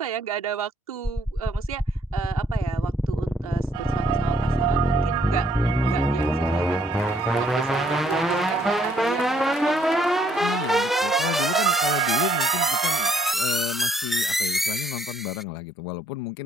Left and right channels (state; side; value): normal; both; correlation 0.67